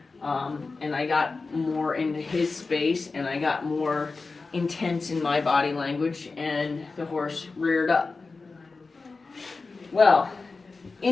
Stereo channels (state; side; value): quieter; right; 4.0 dB